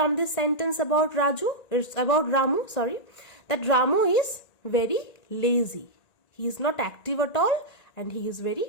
this sentence about Raju? It's about Ramu, sorry. That Ramu is very lazy. He is not active at all and he is very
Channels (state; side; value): late; right; 1.9 ms